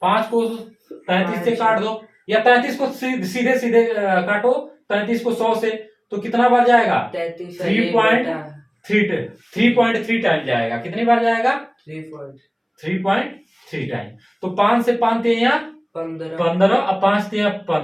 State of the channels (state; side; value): identical; both; correlation 1.00